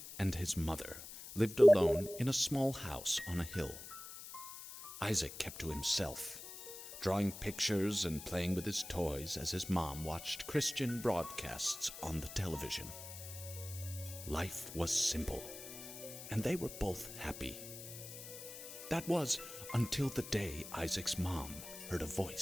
and his mother lived alone in a small house on a hill. Isaac kept to himself, drawing pictures and playing with his toys as his mom watched Christian broadcasts on the television. Life was simple, and they were both happy. That was until the day Isaac's mom heard a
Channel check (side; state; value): left; noise; hiss, 12 dB below the sound